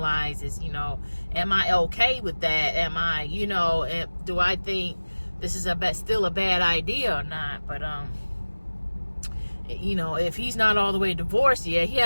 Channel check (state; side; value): inverted; both; correlation -1.00